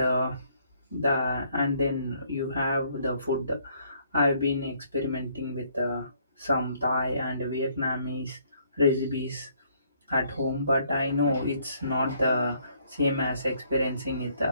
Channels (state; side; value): inverted; both; correlation -0.66